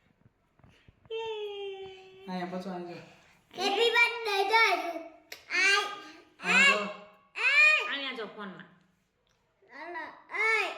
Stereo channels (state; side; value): identical; both; correlation 1.00